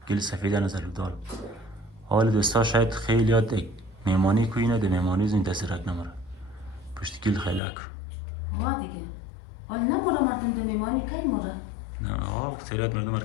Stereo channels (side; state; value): right; drops out; at 7.6 s